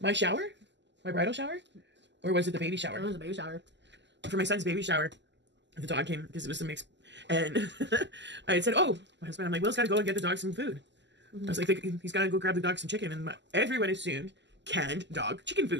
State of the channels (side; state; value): left; late; 0.52 ms